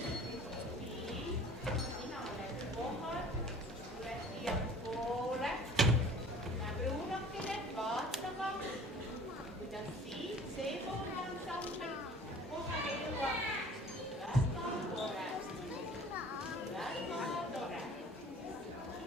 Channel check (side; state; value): both; normal; correlation 0.47